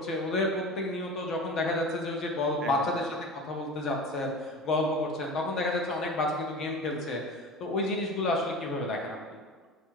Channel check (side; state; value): both; normal; correlation 0.33